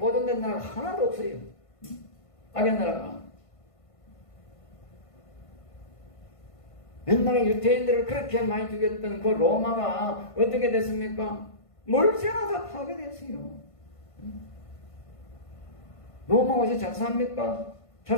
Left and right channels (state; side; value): late; right; 1.5 ms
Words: 나라가 하나도 없어요. 악의 나라가. 옛날에 유태인들을 그렇게 많이 죽였던 그 로마가 어떻게 됐습니까? 멀쩡하다 다 파괴됐어요. 로마가 어디서 잘 삽니까? 잘